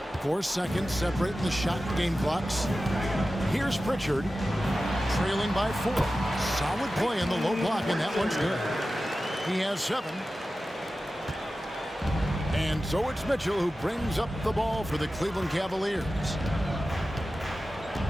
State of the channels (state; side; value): normal; both; correlation 0.94